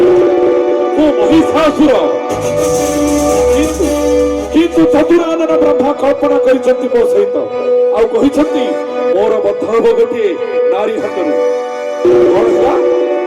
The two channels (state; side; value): identical; both; correlation 1.00